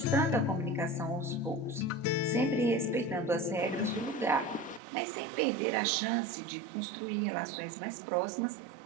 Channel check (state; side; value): drops out; left; at 4.8 s